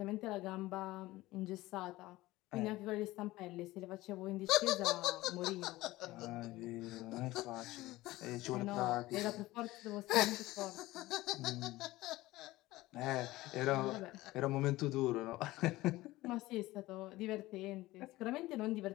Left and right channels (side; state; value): right; quieter; 18.2 dB